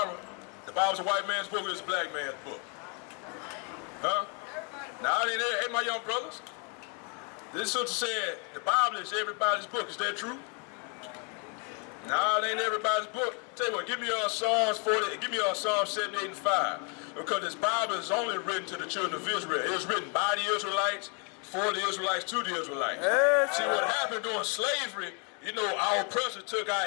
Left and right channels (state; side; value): quieter; right; 36.5 dB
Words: The Bible's a white man's book or it's a black man's book? Huh? Now, it ain't there. Hey, my young brothers. This sister said the Bible is everybody's book. Is that true? No, it ain't everybody's book. Tell you what, give me Psalms 40, give me Psalms 78 and 5. Because this Bible is only written to the children of Israel. It was written by the Israelites, for the Israelites, to the Israelites. See, what happened during slavery, you know, our oppressors took